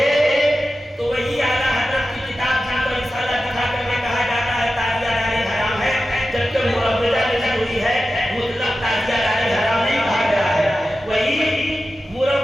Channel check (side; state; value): both; normal; correlation 0.92